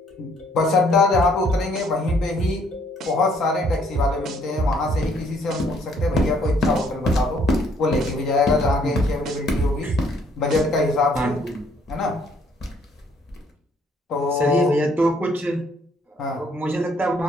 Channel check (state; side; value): normal; both; correlation 0.65